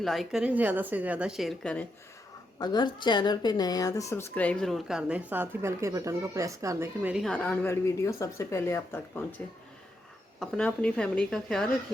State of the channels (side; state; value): both; normal; correlation 0.81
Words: करें, ज़्यादा से ज़्यादा शेयर करें। अगर चैनल पे नए हैं तो सब्सक्राइब ज़रूर कर दें, साथ ही बेल के बटन को प्रेस कर दें कि मेरी हर आने वाली वीडियो सबसे पहले आप तक पहुंचे। अपना अपनी फैमिली का ख्याल